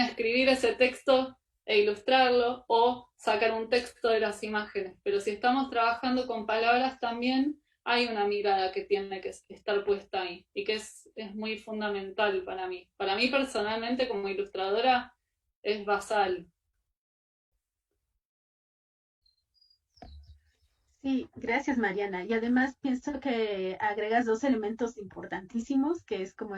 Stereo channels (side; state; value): both; identical; correlation 1.00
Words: escribir ese texto e ilustrarlo, o sacar un texto de las imágenes, pero si estamos trabajando con palabras también hay una mirada que tiene que estar puesta ahí, y que es muy fundamental para mí. Para mí personalmente como ilustradora es basal. Sí, gracias Mariana. Y además pienso que agregas dos elementos importantísimos, que es como